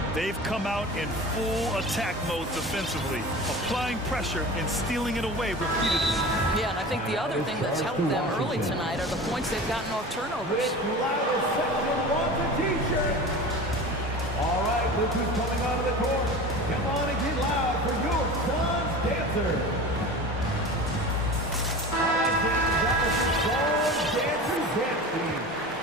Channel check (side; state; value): both; normal; correlation 0.34